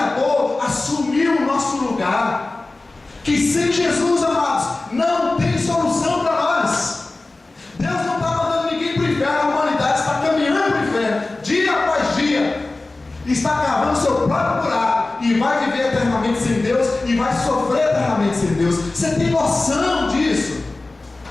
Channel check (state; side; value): quieter; right; 3.2 dB